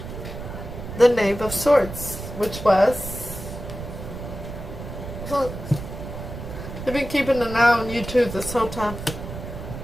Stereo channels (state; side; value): noise; right; rumble, 9 dB below the sound